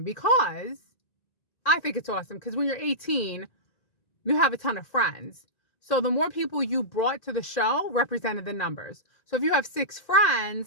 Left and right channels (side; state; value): right; late; 1.9 ms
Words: because I think it's awesome because when you're 18, you have a ton of friends. So the more people you brought to the show represented the numbers. So if you have 6